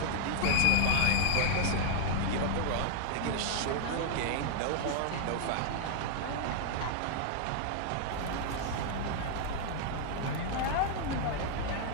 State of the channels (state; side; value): different; both; correlation 0.00